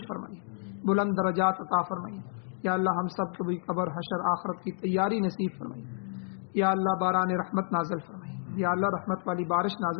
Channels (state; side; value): silent; right; digital silence